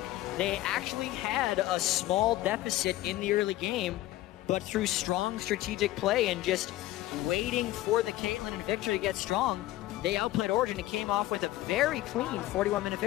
They actually had a small deficit in the early game, but through strong strategic play and just waiting for the Caitlyn and Victor to get strong, they outplayed Origen and came off with a very clean 41-minute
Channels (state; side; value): quieter; right; 16.0 dB